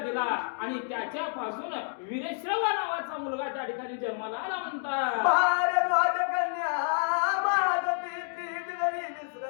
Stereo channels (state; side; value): silent; right; 58 dB below the other